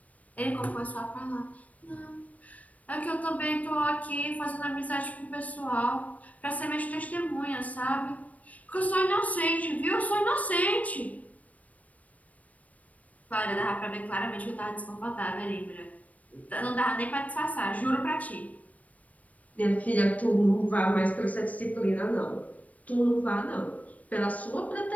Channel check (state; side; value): late; right; 0.070 ms